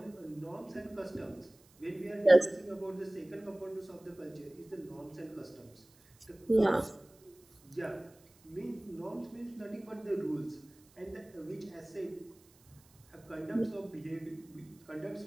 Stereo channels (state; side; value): noise; right; hiss, 28 dB below the sound